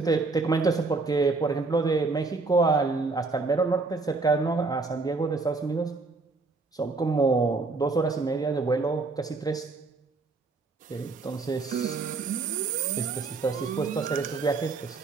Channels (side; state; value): left; quieter; 3.9 dB